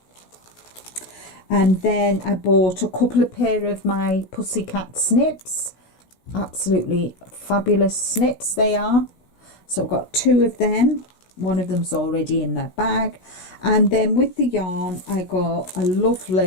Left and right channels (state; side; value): late; right; 16 ms